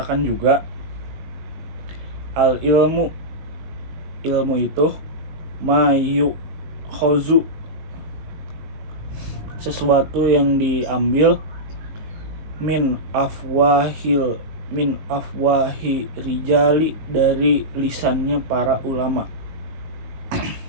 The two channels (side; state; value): left; late; 19 ms